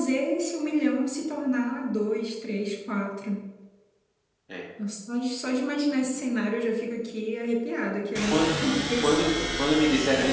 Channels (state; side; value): identical; both; correlation 1.00